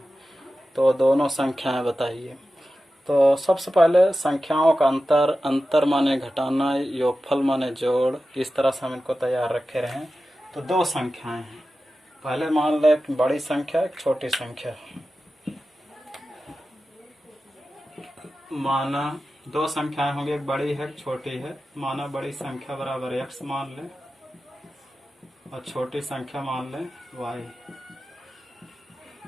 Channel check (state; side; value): normal; both; correlation 0.93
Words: तो दोनों संख्याएं बताइए। तो सबसे पहले संख्याओं का अंतर माने घटाना, योगफल माने जोड़, इस तरह से हम इनको तैयार रखे रहें। तो दो संख्याएं हैं, पहले मान लें एक बड़ी संख्या एक छोटी संख्या, माना दो संख्याएं होंगी, एक बड़ी है एक छोटी है। माना बड़ी संख्या बराबर x मान लें और छोटी संख्या मान लें y,